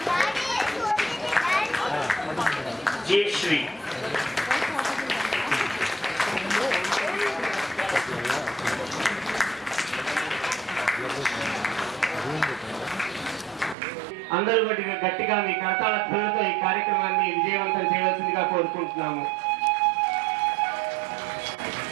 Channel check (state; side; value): drops out; left; at 13.8 s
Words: జయశ్రీ అందరూ గట్టిగా మీ కరతాళ ధ్వనులతో ఈ కార్యక్రమాన్ని విజయవంతం చేయవలసిందిగా కోరుకుంటున్నాము.